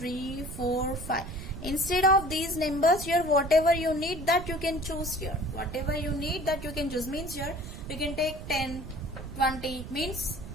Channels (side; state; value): right; noise; rumble, 11 dB below the sound